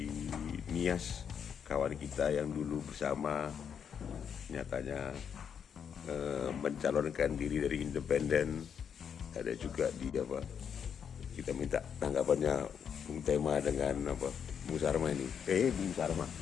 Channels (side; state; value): right; quieter; 7.7 dB